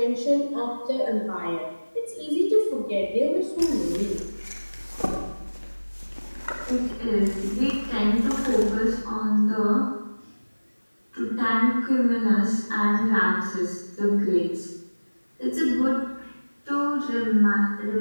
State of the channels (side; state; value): both; inverted; correlation -1.00